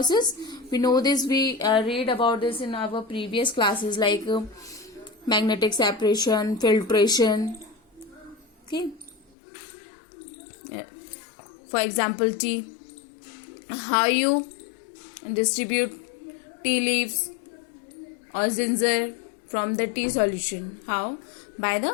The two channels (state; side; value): drops out; right; at 9.3 s